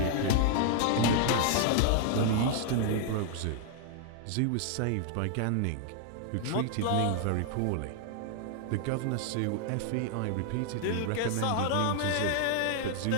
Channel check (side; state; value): both; different; correlation 0.00